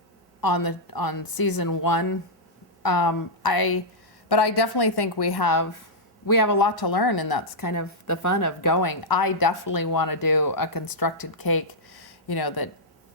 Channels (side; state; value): both; normal; correlation -0.07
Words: on season 1. But I definitely think we have a lot to learn, and that's kind of the fun of going. I definitely want to do a constructed cake,